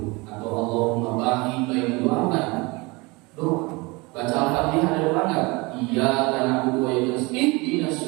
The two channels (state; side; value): quieter; left; 25.6 dB